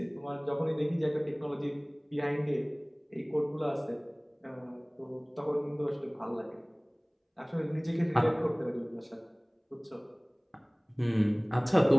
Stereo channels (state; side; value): identical; both; correlation 1.00